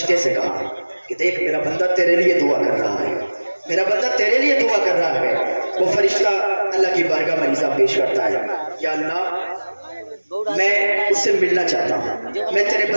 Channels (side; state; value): both; inverted; correlation -1.00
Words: سے کہا کہ دیکھ میرا بندہ تیرے لیے دعا کر رہا ہے، میرا بندہ تیرے لیے دعا کر رہا ہے۔ وہ فرشتہ اللہ کی بارگاہ میں عریضہ پیش کرتا ہے، یا اللہ میں اس سے ملنا چاہتا ہوں، میں تیرے